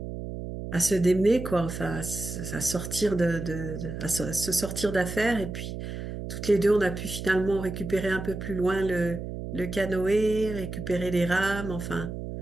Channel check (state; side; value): noise; right; hum, 7 dB below the sound